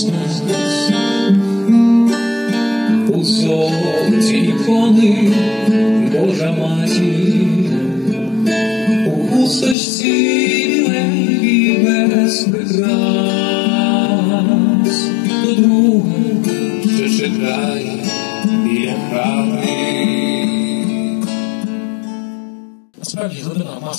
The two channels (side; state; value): right; drops out; at 9.8 s